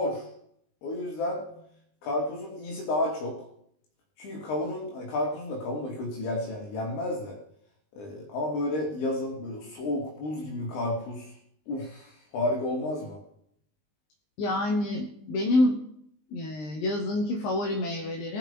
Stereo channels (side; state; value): right; late; 20 ms